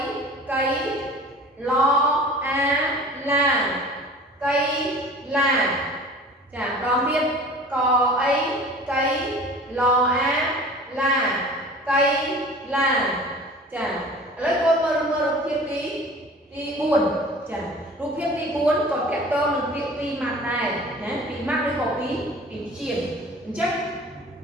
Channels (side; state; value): both; normal; correlation 0.43